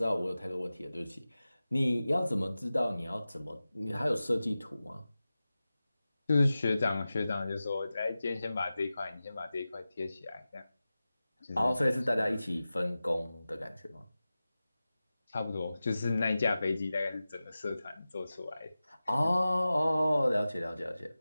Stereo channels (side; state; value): both; inverted; correlation -0.95